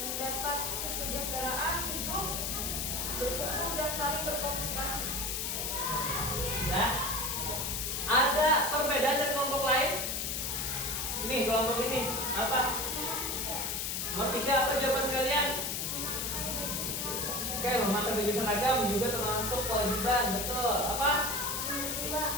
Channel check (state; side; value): noise; left; hiss, 1 dB below the sound